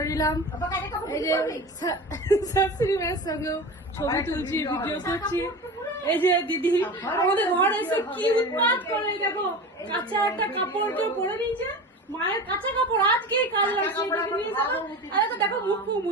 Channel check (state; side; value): normal; both; correlation 0.31